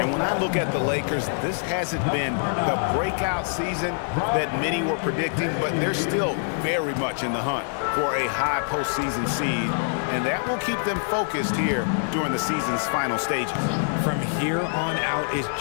when I look at the Lakers, this hasn't been the breakout season that many were predicting, but they're still very much in the hunt for a high postseason seed, and that will keep them focused here during the season's final stages. From here on out is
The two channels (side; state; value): right; silent; digital silence